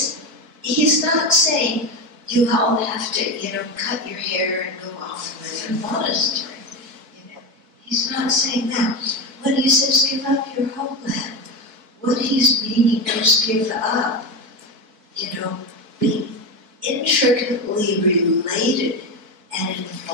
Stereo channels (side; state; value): left; late; 4.6 ms